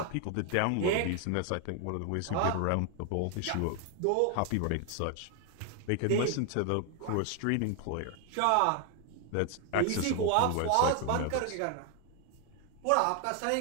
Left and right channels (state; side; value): different; both; correlation 0.01